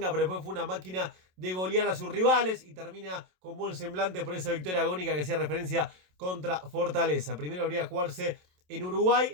pero después fue una máquina de golear a sus rivales y termina con buen semblante por esa victoria agónica que hacía referencia contra Fortaleza. Primero habría jugarse en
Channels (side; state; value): left; late; 27 ms